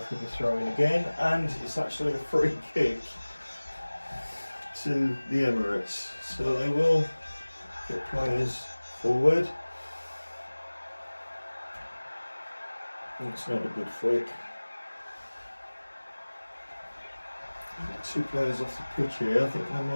the throw in again, and it's actually a free kick to the Emirates. So they will get players forward. It's not a good flick. Two players off the pitch here. I think they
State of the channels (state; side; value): inverted; both; correlation -1.00